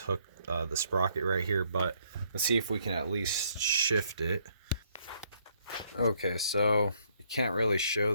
the sprocket right here. But let's see if we can at least shift it. Okay, so you can't really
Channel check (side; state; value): both; inverted; correlation -0.69